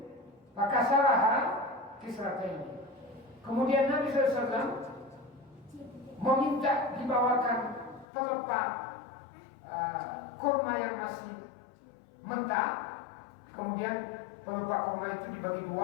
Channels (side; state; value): right; drops out; at 8.1 s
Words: fakasaraha kisrataini. Kemudian Nabi SAW meminta dibawakan pelepah kurma yang masih mentah. Kemudian pelepah kurma itu dibagi